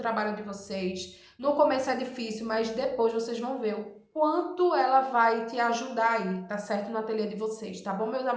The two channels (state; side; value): identical; both; correlation 1.00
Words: de vocês. No começo é difícil, mas depois vocês vão ver o quanto ela vai te ajudar aí, tá certo? No ateliê de vocês, tá bom, meus